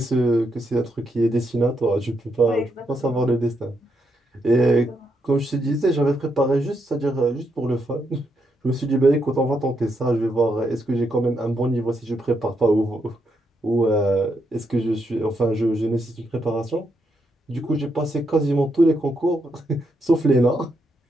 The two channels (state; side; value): normal; both; correlation 0.80